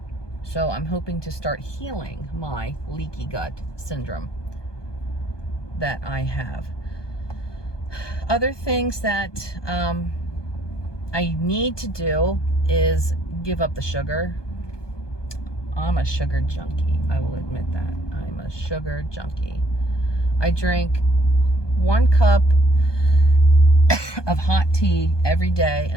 So I'm hoping to start healing my leaky gut syndrome that I have. Other things that I need to do is give up the sugar. I'm a sugar junkie. I will admit that. I'm a sugar junkie. I drink 1 cup of hot tea every day,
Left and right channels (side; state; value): right; late; 1.2 ms